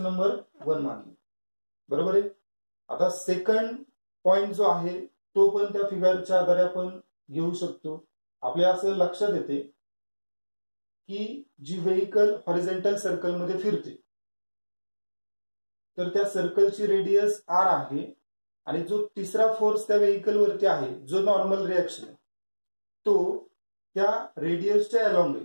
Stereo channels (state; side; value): inverted; both; correlation -1.00